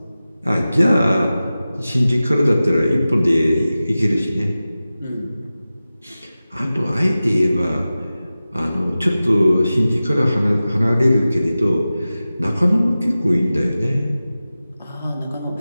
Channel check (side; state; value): both; inverted; correlation -0.95